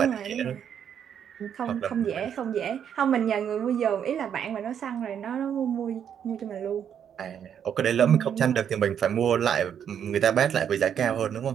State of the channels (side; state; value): left; quieter; 8.6 dB